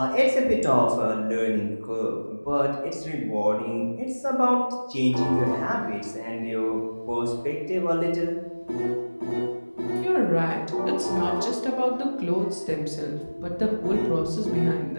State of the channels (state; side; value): inverted; both; correlation -1.00